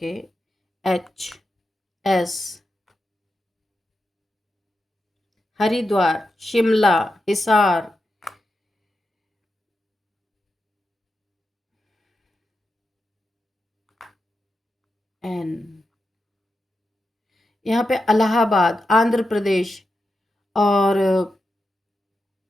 HS हरिद्वार, शिमला, हिसार, एन, यहाँ पे इलाहाबाद, आंध्र प्रदेश और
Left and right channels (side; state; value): both; normal; correlation 0.88